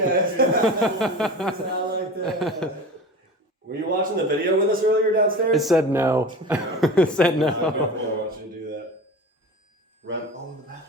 Were you watching the video with us earlier downstairs? It said no. It said I no. want you to do that. Red. Oh, in the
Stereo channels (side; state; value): both; normal; correlation 0.34